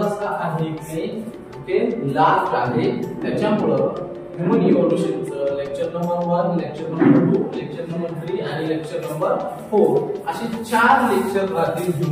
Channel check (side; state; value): both; identical; correlation 1.00